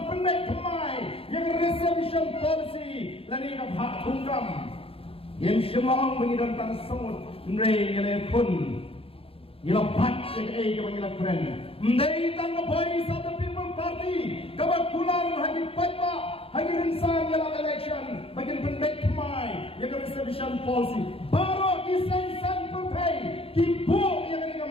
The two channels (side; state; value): right; late; 0.27 ms